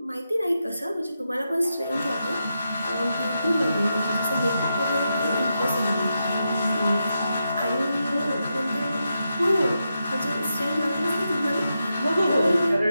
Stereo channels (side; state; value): both; inverted; correlation -0.86